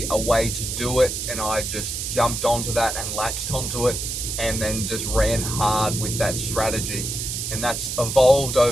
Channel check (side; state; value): right; noise; hiss, 4 dB below the sound